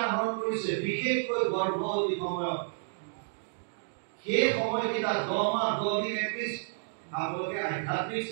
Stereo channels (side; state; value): left; silent; digital silence